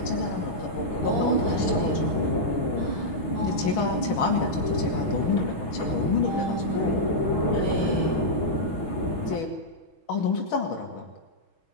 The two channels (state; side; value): late; right; 6.2 ms